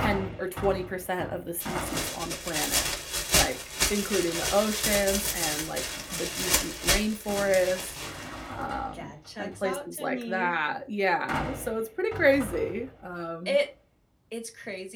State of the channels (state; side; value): identical; both; correlation 1.00